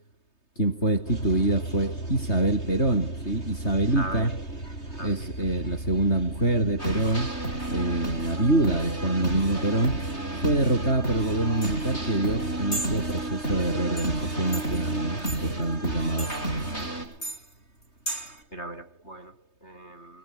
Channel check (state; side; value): late; right; 3.3 ms